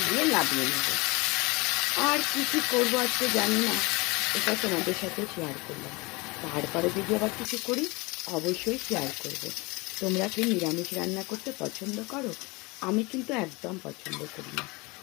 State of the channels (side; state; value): right; quieter; 25.7 dB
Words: দিয়ে নামিয়ে নেবো। আর কি কি করবো আজকে জানি না, এটা তোমাদের সাথে শেয়ার করলাম। তারপরে যদি আবার কিছু করি অবশ্যই শেয়ার করব। তোমরা কি নিরামিষ রান্না করতে পছন্দ করো? আমি কিন্তু একদম পছন্দ করি না,